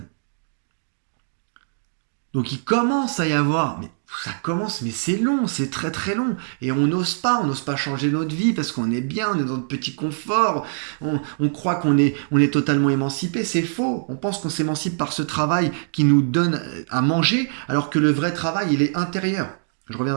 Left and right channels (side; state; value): left; silent; digital silence